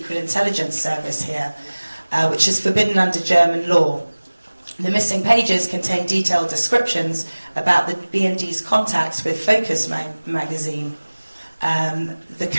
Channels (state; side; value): inverted; both; correlation -1.00